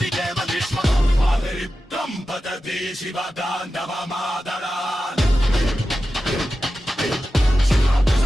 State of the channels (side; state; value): both; normal; correlation 0.92